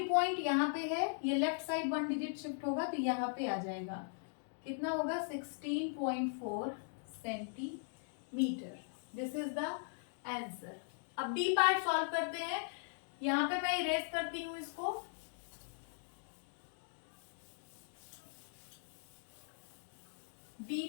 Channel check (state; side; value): silent; right; digital silence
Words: पॉइंट यहाँ पे है, ये लेफ्ट साइड 1 डिजिट शिफ्ट होगा, तो यहाँ पे आ जाएगा। कितना होगा? 16.4 centimetre. This is the answer. अब डी पार्ट सॉल्व करते हैं। यहाँ पे मैं इरेज करती हूँ इसको। D